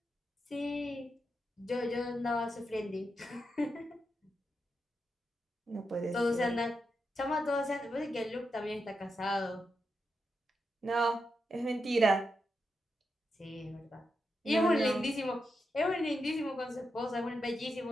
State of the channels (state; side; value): normal; both; correlation 0.86